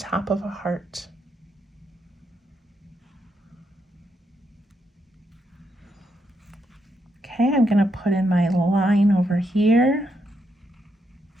of a heart. Okay, I'm going to put in my line over here.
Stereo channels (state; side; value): normal; both; correlation 0.80